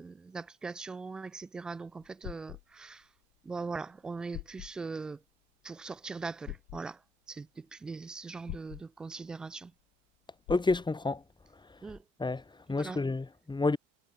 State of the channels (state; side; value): normal; both; correlation 0.80